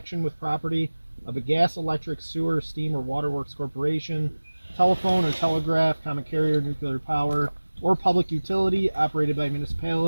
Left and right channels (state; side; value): inverted; both; correlation -1.00